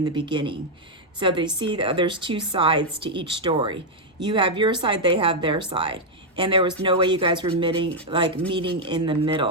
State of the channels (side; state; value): both; normal; correlation -0.01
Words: the beginning. So they see that there's two sides to each story. You have your side, they have their side. And there was no way you guys were meeting in the